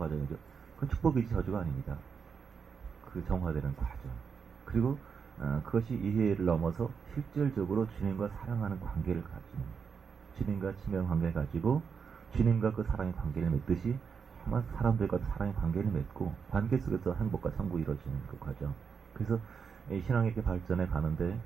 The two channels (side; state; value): left; quieter; 6.2 dB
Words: 그건 축복이지 저주가 아닙니다. 그 정화되는 과정. 그리고 그것이 이해를 넘어서 실질적으로 주님과 사랑하는 관계를 가지고 주님과 친밀한 관계를 가지고 주님과 그 사랑의 관계를 맺듯이 사람들과 사랑의 관계를 맺고 관계 속에서 행복과 천국이 이루어지는 그 과정. 그래서 이 신앙이 이렇게 발전해 가는데